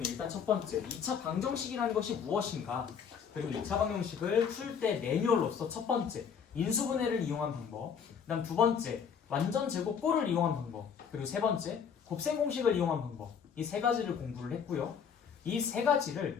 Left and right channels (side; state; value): right; quieter; 7.1 dB